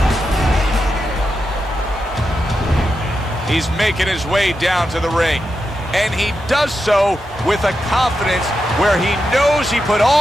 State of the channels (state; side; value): normal; both; correlation 0.87